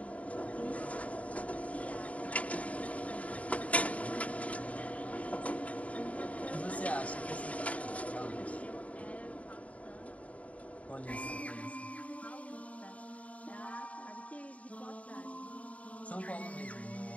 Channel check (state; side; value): late; right; 0.067 ms